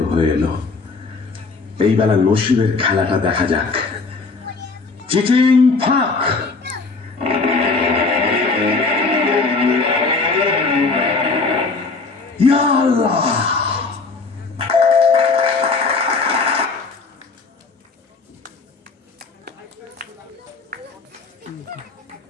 হয়ে এলো। এই বেলা নসিবের খেলাটা দেখা যাক। চিটিং ফাঁক। ইয়া আল্লাহ,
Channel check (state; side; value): quieter; right; 4.0 dB